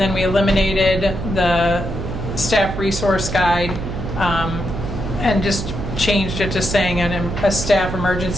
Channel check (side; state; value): right; noise; hum, 6 dB below the sound